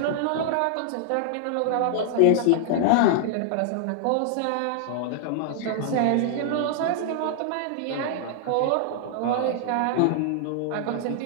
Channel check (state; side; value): different; both; correlation -0.01